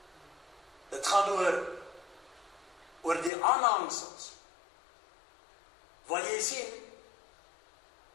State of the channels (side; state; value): right; drops out; at 3.3 s